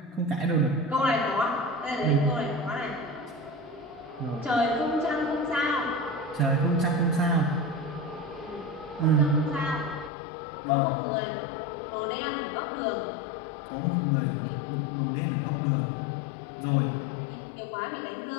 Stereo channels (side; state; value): right; drops out; at 10.1 s